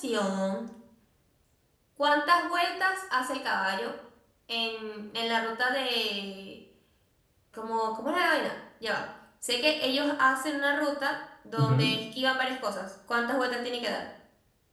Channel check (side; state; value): both; identical; correlation 1.00